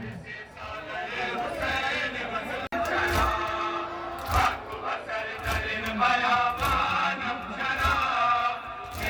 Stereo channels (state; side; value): identical; both; correlation 1.00